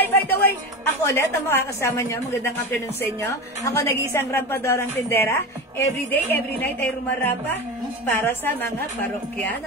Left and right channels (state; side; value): normal; both; correlation 0.24